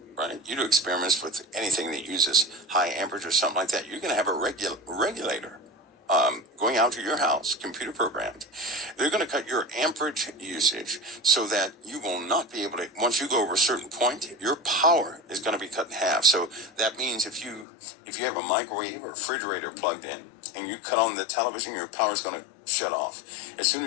right? You do experiments with anything that uses high amperage or something like that, you're going to have a regulator going out to your house, computer programmed. They're going to cut your amperage usage so that you will not be able to, once you go over a certain point, your power is going to be cut in half. So that means if you have a microwave or refrigerator plugged in and you cut on the television, your power is going to shut off. As soon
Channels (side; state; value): right; drops out; at 17.7 s